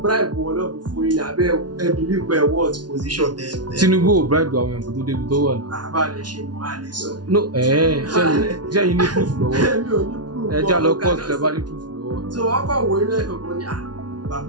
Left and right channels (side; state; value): left; late; 0.69 ms